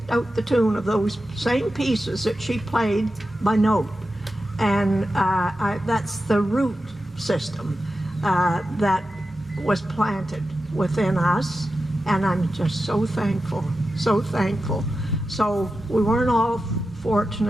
out the tune of those same pieces that she played by note. And that's the root system that was planted within us. And I'm just so thankful, so thankful. So we weren't all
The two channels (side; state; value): both; normal; correlation 0.91